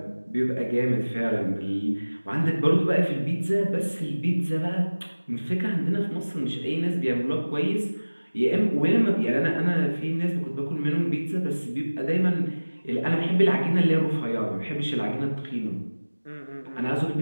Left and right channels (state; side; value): inverted; both; correlation -1.00